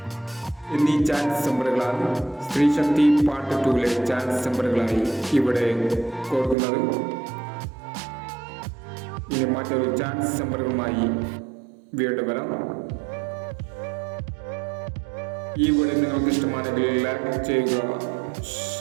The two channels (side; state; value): left; drops out; at 6.6 s